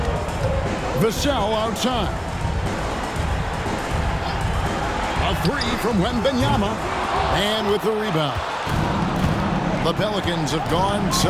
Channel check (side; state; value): both; identical; correlation 1.00